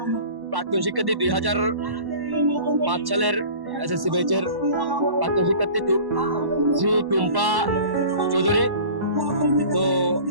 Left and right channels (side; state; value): left; late; 1.1 ms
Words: প্রাক্তন শিক্ষার্থী 2005 সালের এসএসসি ব্যাচের প্রাক্তন শিক্ষার্থী শ্রী টুম্পা চৌধুরী। তো